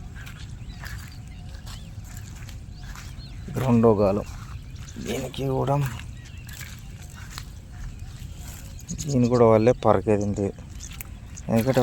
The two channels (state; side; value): identical; both; correlation 1.00